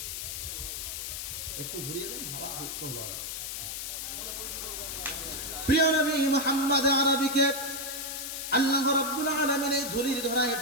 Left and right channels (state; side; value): noise; left; hiss, 5 dB below the sound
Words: একটু ঘুরিয়ে দেন, হাওয়া ঢুকতো ভালো। প্রিয় নবী মুহাম্মদ আরবিকে আল্লাহ রাব্বুল আলামিন এই ধুলির ধরায়